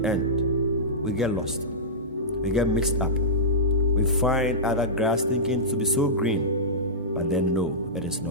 end, we get lost. We get mixed up. We find other grass thinking to be so green, but then no, it is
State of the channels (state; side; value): normal; both; correlation -0.15